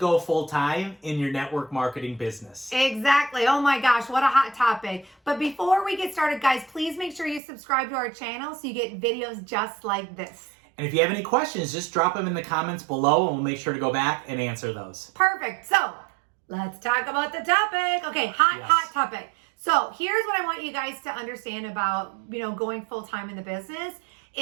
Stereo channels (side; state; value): left; drops out; at 7.4 s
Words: full-time in your network marketing business. Exactly. Oh my gosh, what a hot topic. But before we get started, guys, please make sure you subscribe to our channel so you get videos just like this. And if you have any questions, just drop them in the comments below and we'll make sure to go back and answer those. Perfect. So, let's talk about the topic. Okay, hot topic. So, here's what I want you guys to understand about, going full-time in the business